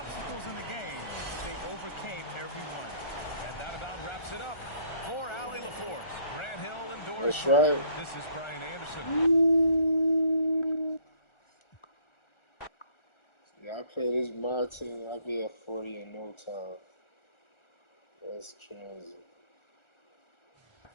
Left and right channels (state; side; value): late; right; 1.4 ms